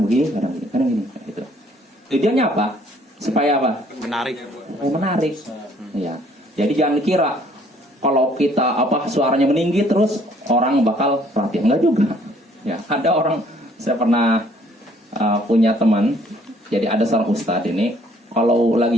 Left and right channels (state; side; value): normal; both; correlation 0.61